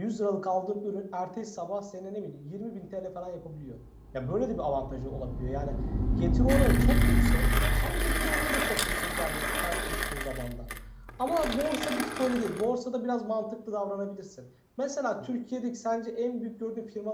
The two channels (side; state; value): both; identical; correlation 1.00